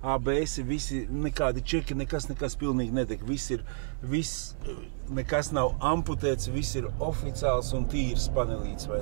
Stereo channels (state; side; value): silent; left; digital silence